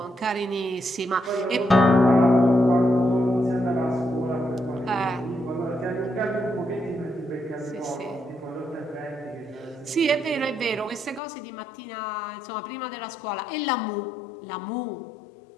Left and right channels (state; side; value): drops out; right; at 11.2 s